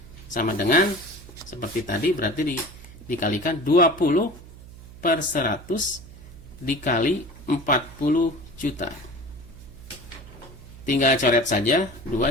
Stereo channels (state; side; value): noise; right; hum, 18 dB below the sound